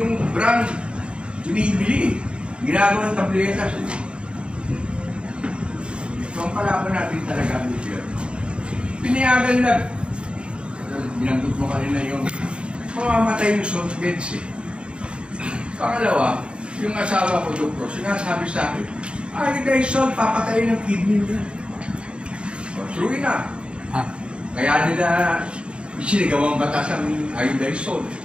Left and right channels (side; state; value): left; late; 0.055 ms